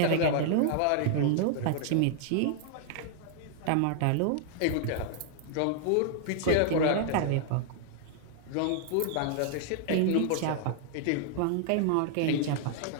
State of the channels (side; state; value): both; different; correlation 0.00